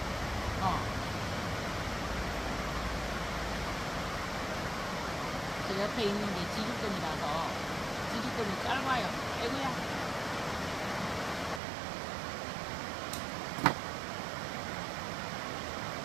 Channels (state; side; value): drops out; left; at 11.6 s